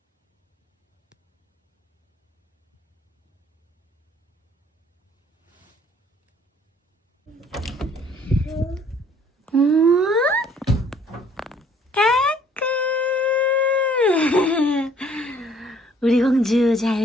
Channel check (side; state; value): both; normal; correlation 0.59